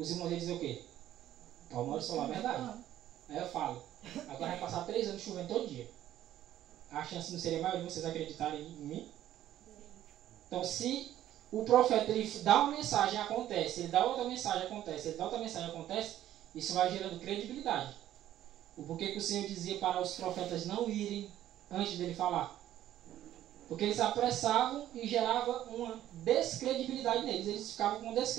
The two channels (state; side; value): quieter; left; 12.5 dB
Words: irmãos iam dizer o quê? Palmar solar, verdade. Aí eu falo, agora vai passar 3 anos chovendo todo dia. A chance não seria maior de vocês acreditarem em mim? Então, se o profeta ele dá uma mensagem, acontece, ele dá outra mensagem, acontece, ele dá outra mensagem, acontece, isso vai gerando credibilidade. O porquê que o Senhor dizia para os profetas não irem antes dele falar? Porque eles apressavam e gerava uma descredibilidade neles, eles ficavam com